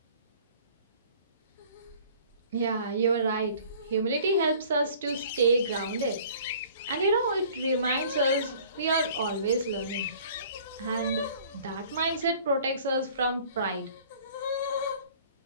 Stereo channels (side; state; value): both; inverted; correlation -0.51